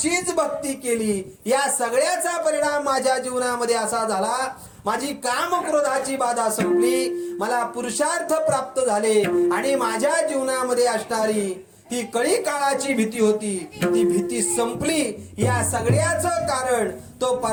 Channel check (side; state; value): both; identical; correlation 1.00